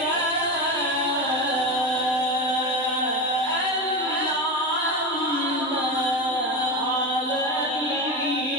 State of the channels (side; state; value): both; normal; correlation 0.21